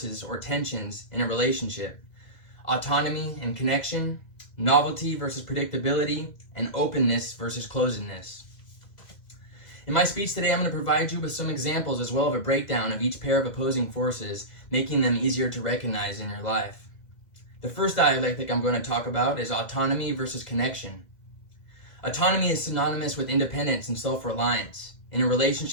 or tensions in a relationship: autonomy and connection, novelty versus predictability, and openness versus closedness. In my speech today, I'm going to provide you with some examples as well as a breakdown of each pair of opposing forces, making them easier to recognize in your life. The first dialectic I'm going to talk about is autonomy versus connection. Autonomy is synonymous with independence and self-reliance. In a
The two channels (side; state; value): right; late; 2.2 ms